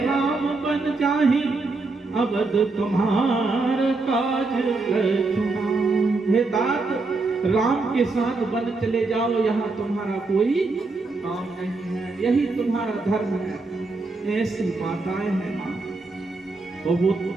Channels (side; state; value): left; quieter; 3.6 dB